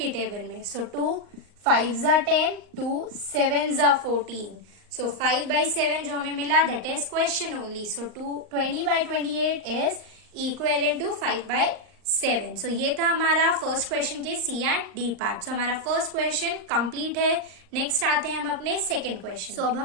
टेबल में। सो 2 5 जा 10, 2 7 जा 14। सो 5/7 जो हमें मिला, that is question only. So 20/28 is equivalent to 5/7। So ये था हमारा फर्स्ट क्वेश्चन के C and D part. So हमारा फर्स्ट क्वेश्चन कंप्लीट है। नेक्स्ट आते हैं हम अपने सेकंड क्वेश्चन। सो अब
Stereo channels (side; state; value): left; late; 39 ms